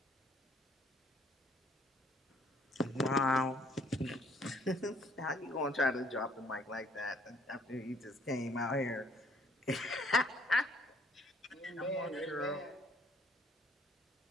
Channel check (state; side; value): normal; both; correlation 0.62